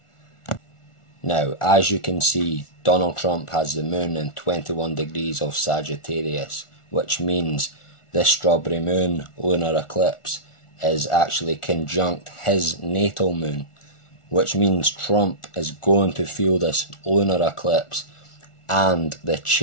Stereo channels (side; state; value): right; late; 1.4 ms